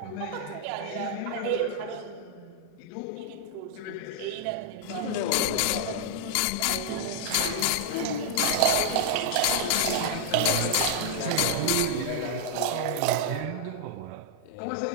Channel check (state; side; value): different; both; correlation -0.01